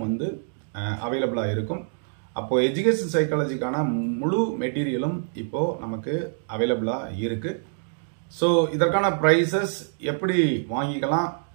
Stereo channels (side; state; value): left; silent; digital silence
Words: அவைலபிளாக இருக்கும். அப்போ எஜுகேஷன் சைக்காலஜிக்கான முழு மெட்டீரியலும் இப்போ நமக்கு அவைலபிளாக இருக்கு. ஸோ இதற்கான ப்ரைஸஸ் எப்படி வாங்கிக்கலாம்,